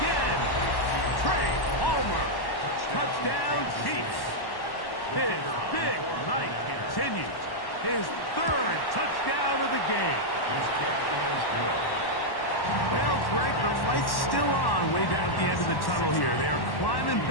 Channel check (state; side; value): late; right; 1.1 ms